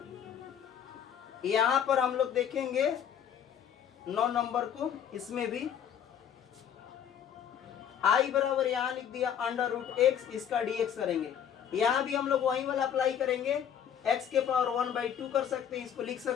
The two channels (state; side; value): quieter; right; 8.8 dB